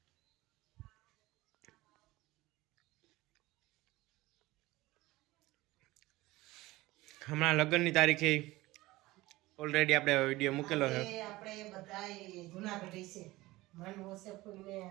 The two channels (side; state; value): left; quieter; 19.1 dB